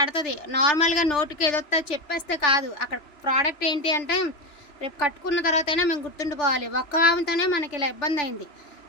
నార్మల్గా నోటుకి ఏదొస్తా చెప్పేస్తే కాదు. అక్కడ ప్రోడక్ట్ ఏంటి అంటే రేపు కట్టుకున్న తర్వాత అయినా మేము గుర్తుండిపోవాలి. ఒక్క వామితోనే మనకి ఇలా ఇబ్బంది అయింది.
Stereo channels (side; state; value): right; late; 2.9 ms